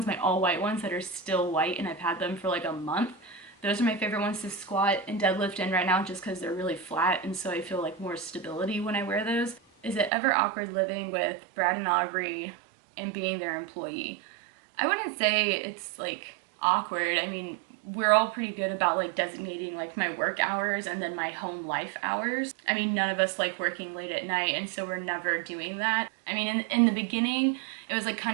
my all white ones that are still white, and I've had them for like a month. Those are my favorite ones to squat and deadlift in right now, just because they're really flat, and so I feel like more stability when I wear those. Is it ever awkward living with Brad and Aubrey and being their employee? I wouldn't say it's like awkward. I mean, we're all pretty good about like designating like my work hours and then my home life hours. I mean, none of us like working late at night, and so we're never doing that. I mean, in the beginning, it was like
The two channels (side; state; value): left; drops out; at 10.1 s